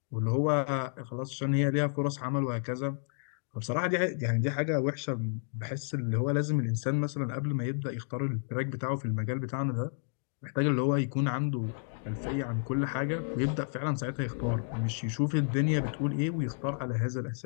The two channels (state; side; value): silent; right; digital silence